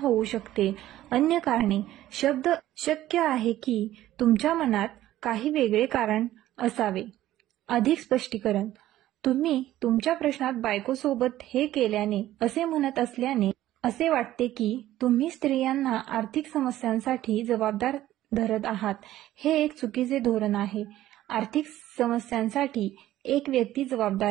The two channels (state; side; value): quieter; left; 14.1 dB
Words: शकते. अन्य कारणे. शब्द शक्य आहे की तुमच्या मनात काही वेगळे कारण असावे. अधिक स्पष्टीकरण. तुम्ही तुमच्या प्रश्नात बायकोसोबत हे केल्याने असे म्हणत असल्याने असे वाटते की तुम्ही स्त्रियांना आर्थिक समस्यांसाठी जबाबदार धरत आहात. हे एक चुकीचे धोरण आहे. आर्थिक समस्यांसाठी एक व्यक्ती